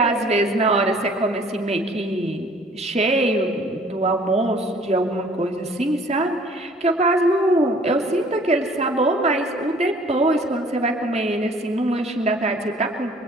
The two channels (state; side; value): normal; both; correlation 0.54